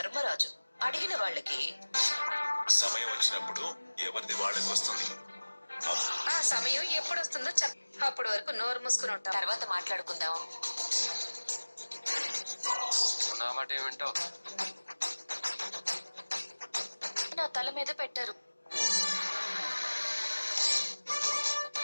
అడిగిన వాళ్ళకి సమయం వచ్చినప్పుడు ఎవరిది వాళ్ళకి వస్తుంది. ఆ సమయం ఎప్పుడు వస్తుందో అప్పటి వరకు నోరు మూసుకుని ఉంటాం. తర్వాత మాట్లాడుకుందాం. నా మాట ఏమింటావు? నా తల మీద పెట్టారు.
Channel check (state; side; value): inverted; both; correlation -1.00